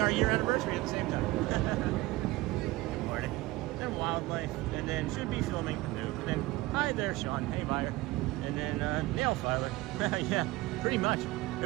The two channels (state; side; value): quieter; left; 19.4 dB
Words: year anniversary at the same time. Good morning. Then Wildlife, and then should be filming. And then, hi there, Sean. Hey, buyer. And then nail filer. Yeah, pretty much.